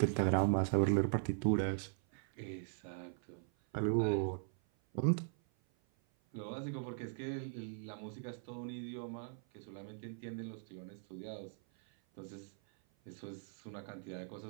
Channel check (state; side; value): silent; left; 51 dB below the other